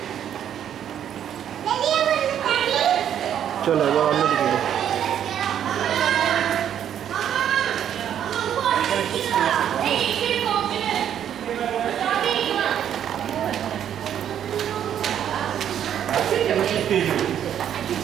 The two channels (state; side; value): quieter; left; 9.7 dB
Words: চলো এবার অন্যদিকে যাই।